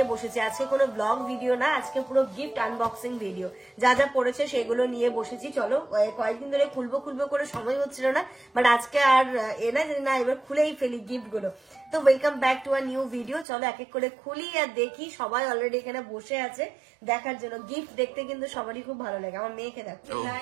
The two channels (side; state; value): left; drops out; at 13.5 s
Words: বসেছে। আজকে কোনো ব্লগ ভিডিও না, আজকে পুরো গিফট আনবক্সিং ভিডিও। যা যা পড়েছে সেগুলো নিয়ে বসেছি। চলো কয়েকদিন ধরে খুলবো করে সময় হচ্ছিল না, বাট আজকে আর না এবার খুলেই ফেলি গিফট গুলো। তো welcome back to a new video. চলো এক এক করে খুলি আর দেখি। সবাই অলরেডি এখানে বসে আছে দেখার জন্য। গিফট দেখতে কিন্তু সবারই খুব ভালো লাগে। আমার মেয়েকে দেখো,